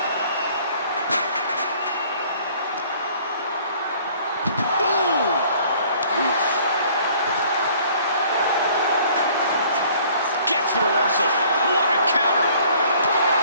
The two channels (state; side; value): inverted; both; correlation -0.55